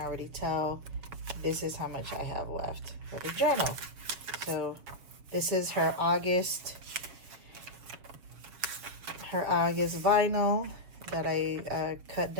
tell, this is how much I have left for the journal. So this is her August vinyl that I cut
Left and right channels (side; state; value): left; late; 7.1 ms